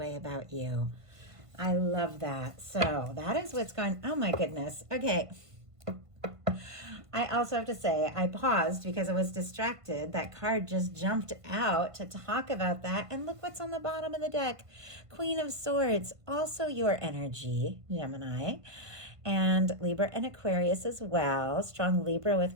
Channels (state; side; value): late; left; 1.5 ms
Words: about you. I love that. So that is what's going, oh my goodness. Okay. I also have to say, I paused because I was distracted. That card just jumped out to talk about that. And look what's on the bottom of the deck. Queen of Swords, also your energy, Gemini. And Libra and Aquarius as well. Strong Libra